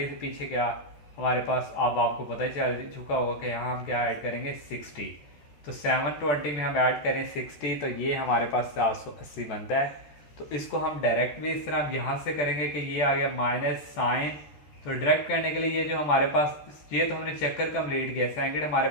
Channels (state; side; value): late; right; 13 ms